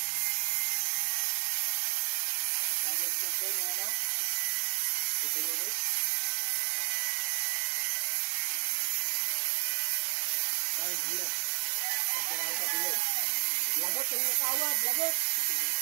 Lagot yung nakawad, lagot.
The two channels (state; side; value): silent; left; 57 dB below the other